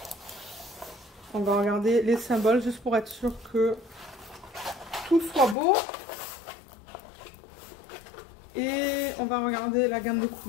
On va regarder les symboles juste pour être sûr que tout soit beau. Et on va regarder la gamme de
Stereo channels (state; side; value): drops out; right; at 5.6 s